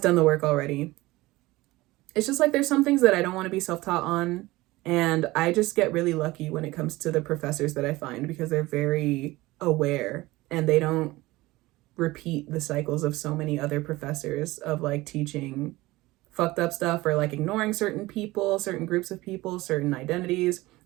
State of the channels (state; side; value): quieter; left; 19.6 dB